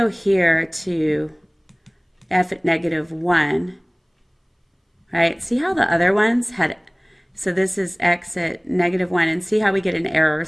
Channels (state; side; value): identical; both; correlation 1.00